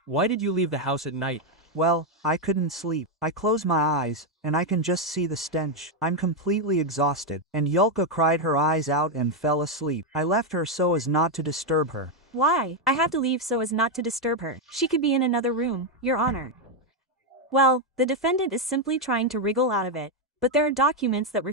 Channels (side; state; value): both; normal; correlation 0.03